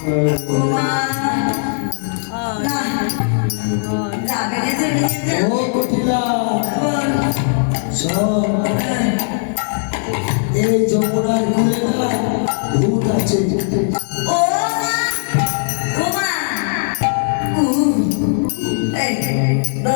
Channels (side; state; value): right; silent; 67 dB below the other